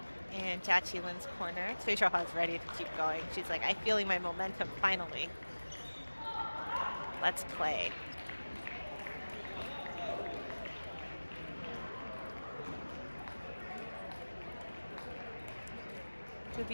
in Jiaqi corner. Cui Xiaohua is ready to keep going. She's like, I'm feeling my momentum finally. Let's play. Could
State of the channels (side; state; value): both; inverted; correlation -1.00